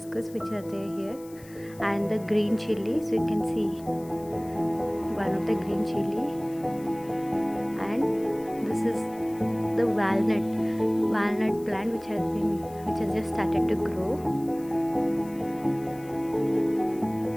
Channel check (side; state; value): left; noise; hiss, 23 dB below the sound